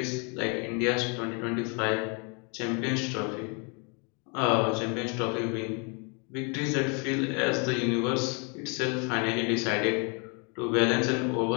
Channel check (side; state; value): right; quieter; 34.6 dB